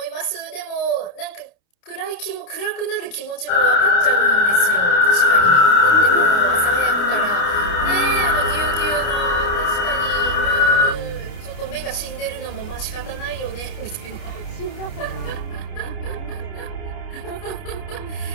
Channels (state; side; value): late; right; 29 ms